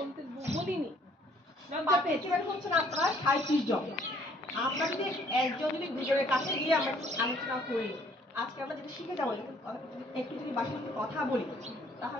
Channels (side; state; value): both; normal; correlation 0.62